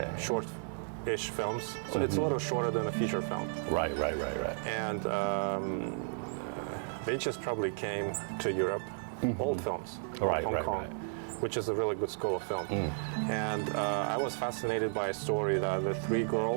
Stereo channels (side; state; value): left; silent; 55 dB below the other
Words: short-ish films. So it's a little shorter than a feature film. Right. And they just probably came to Europe, old films, Hong Kong, which is a really good school of film. And I was fascinated by a story that the 3